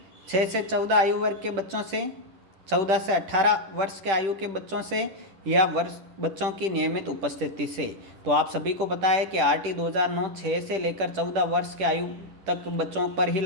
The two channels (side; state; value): left; late; 10 ms